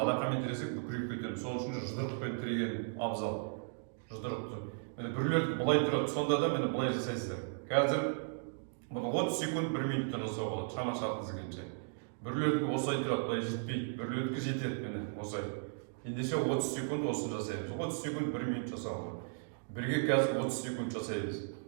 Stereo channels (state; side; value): silent; left; digital silence